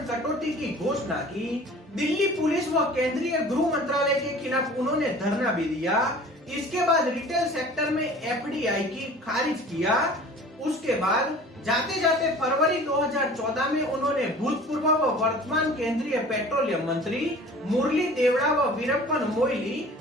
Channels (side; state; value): both; normal; correlation 0.44